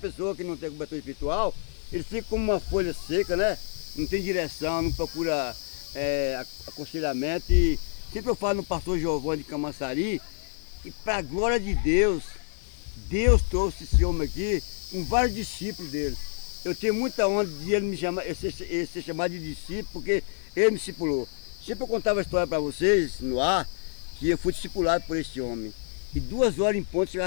que não tem cobertura espiritual, ele fica como uma folha seca, né? Não tem direção, não procura aconselhamento. E sempre eu falo no pastor Giovanni de Camaçari, e para a glória de Deus, Deus trouxe esse homem aqui com vários discípulos dele. Eu tenho muita honra de ele me chamar, ele ser chamado de discípulo, porque ele me discipulou. Sempre eu contava a história para vocês no ar, que eu fui discipulado por esse homem. E 2 horas em ponto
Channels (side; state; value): right; silent; 59 dB below the other